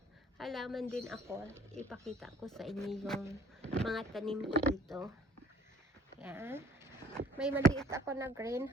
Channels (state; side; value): normal; both; correlation 0.55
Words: halaman din ako. Ipakita ko sa inyo yung mga tanim ko dito. Yan. May maliit ako na